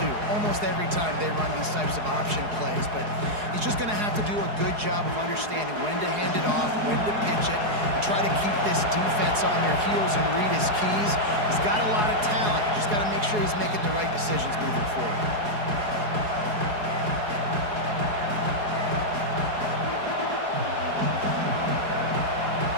Almost every time they run these types of option plays. But he's just going to have to do a good job of understanding when to hand it off, when to pitch it, and try to keep this defense on their heels and read his keys. He's got a lot of talent. Just got to make sure he's making the right decisions moving forward.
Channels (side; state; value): left; late; 4.8 ms